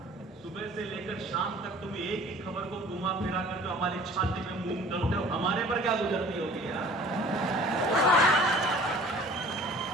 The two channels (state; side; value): normal; both; correlation 0.48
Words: सुबह से लेकर शाम तक तुम एक ही खबर को घुमा फिरा कर जो हमारी छाती में मूंग डालते हो, हमारे पर क्या गुजरती होगी यार।